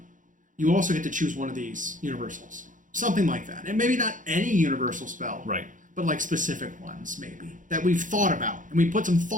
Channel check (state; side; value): late; left; 0.38 ms